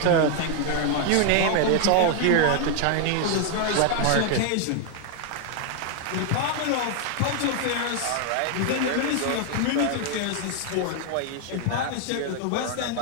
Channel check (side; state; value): both; different; correlation 0.00